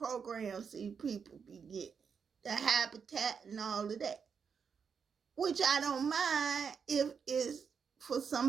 these people be getting. The habitat and all of that. Which I don't mind if it's for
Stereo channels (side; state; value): left; quieter; 6.4 dB